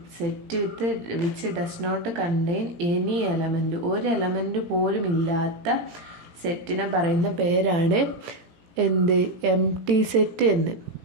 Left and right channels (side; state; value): left; late; 18 ms